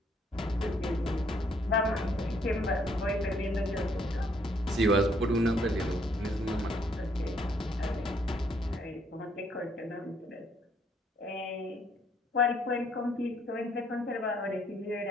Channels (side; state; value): both; normal; correlation 0.68